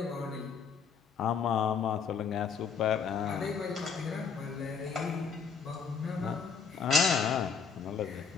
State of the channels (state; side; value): quieter; right; 6.0 dB